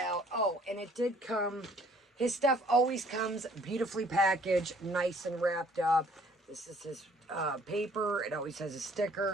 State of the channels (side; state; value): both; normal; correlation 0.58